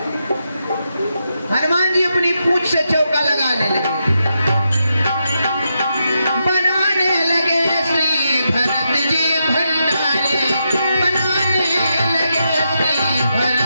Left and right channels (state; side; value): inverted; both; correlation -0.84